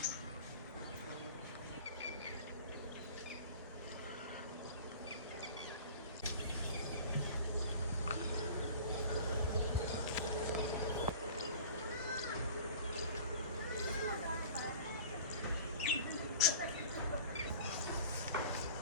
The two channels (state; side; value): inverted; both; correlation -0.42